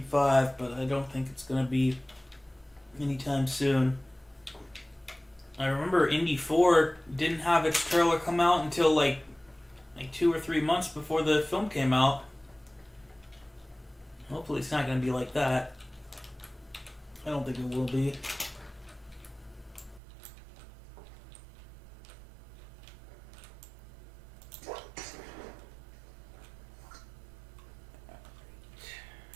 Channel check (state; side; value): drops out; left; at 20.0 s